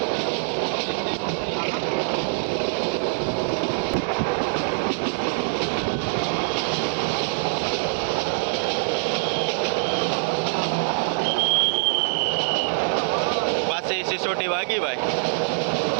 પાછી સિસોટી વાગી ભાઈ.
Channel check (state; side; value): silent; left; 61 dB below the other